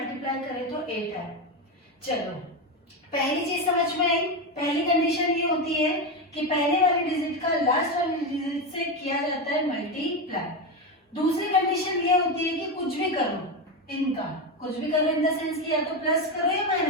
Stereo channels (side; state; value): both; normal; correlation 0.13